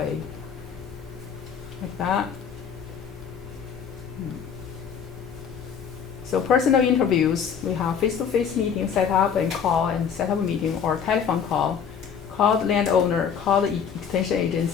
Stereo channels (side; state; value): right; quieter; 7.3 dB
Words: like that. So personal interviews, we have face-to-face meeting set up and call and set up a meeting or telephone call. Call the landowner, call the extension